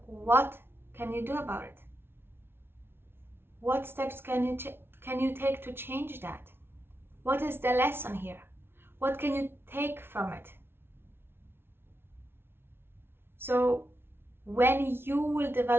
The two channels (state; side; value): late; left; 0.11 ms